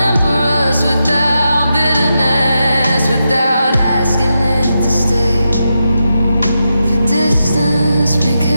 us without bitterness, without asking it to stay. The distance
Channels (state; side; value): inverted; both; correlation -0.87